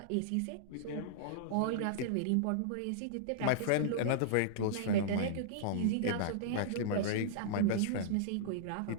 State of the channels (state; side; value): different; both; correlation -0.02